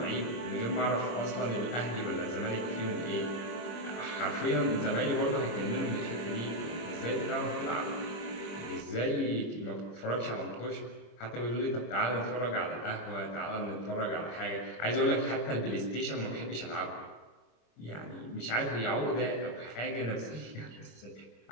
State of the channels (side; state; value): right; late; 26 ms